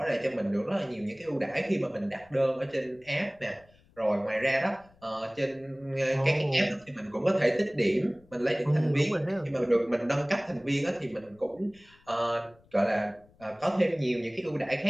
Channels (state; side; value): noise; left; rumble, 30 dB below the sound